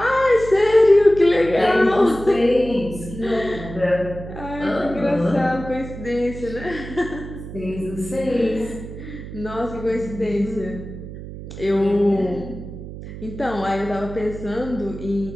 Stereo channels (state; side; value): noise; right; hum, 11 dB below the sound